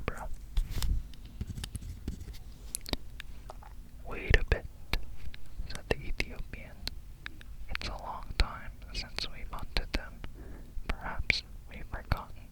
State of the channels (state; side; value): identical; both; correlation 1.00